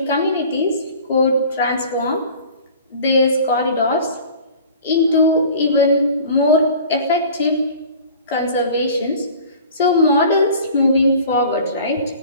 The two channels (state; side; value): inverted; both; correlation -0.44